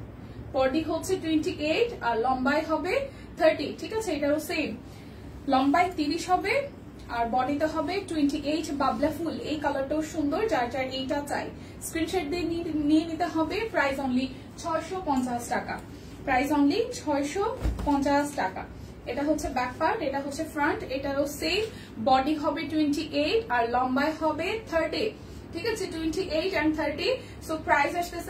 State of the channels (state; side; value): identical; both; correlation 1.00